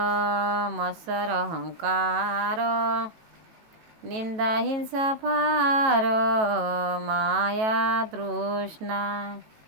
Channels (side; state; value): left; late; 18 ms